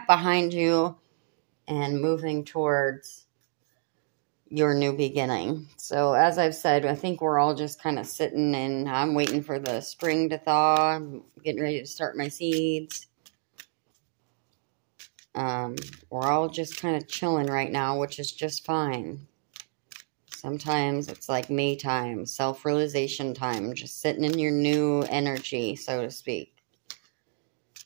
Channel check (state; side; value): silent; left; 59 dB below the other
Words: behind you and moving towards your new beginning. So as I've said, I think we're all just kind of sitting and I'm waiting for the spring to thaw. I'm getting ready to start my seeds. We're all just kind of chilling right now, which is just fine. Sometimes it's like me time, self-realization time, just sitting in your new energy, so to speak.